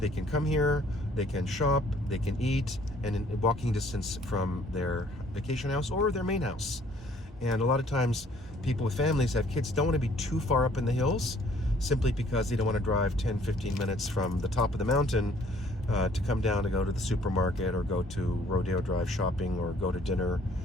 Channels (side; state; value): both; normal; correlation 0.60